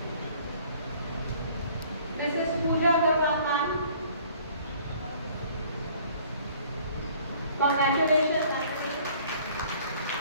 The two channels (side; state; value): both; inverted; correlation -0.55